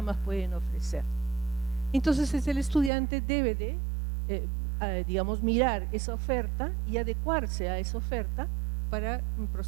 pueden ofrecer. Entonces el estudiante debe de, digamos, mirar esa oferta y adecuarse a esa oferta para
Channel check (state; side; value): drops out; left; at 2.9 s